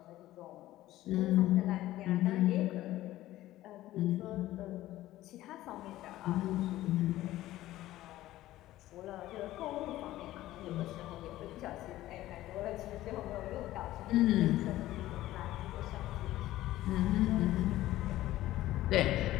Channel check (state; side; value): quieter; right; 15.3 dB